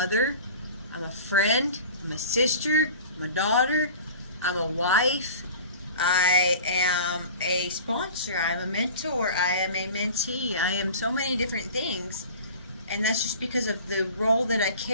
I'm a friend, I'm a sister, I'm a daughter, I'm a wife, I am a sponsor, I'm a mentor, I am a mentee, I am so many different things. And that's just because of the role that I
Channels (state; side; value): inverted; both; correlation -0.40